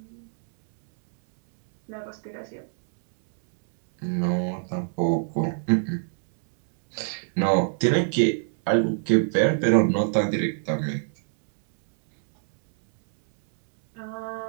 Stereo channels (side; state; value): left; silent; 62 dB below the other